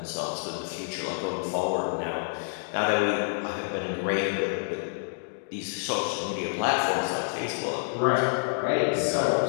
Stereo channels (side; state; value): right; silent; digital silence